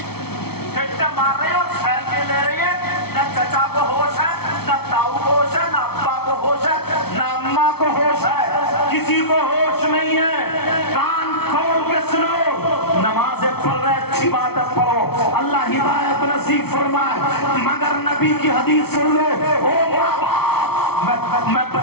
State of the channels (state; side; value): late; right; 0.96 ms